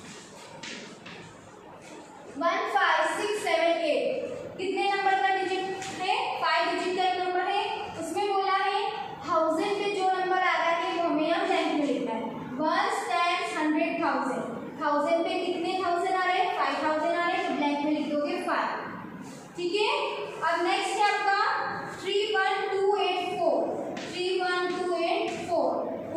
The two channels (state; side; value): identical; both; correlation 1.00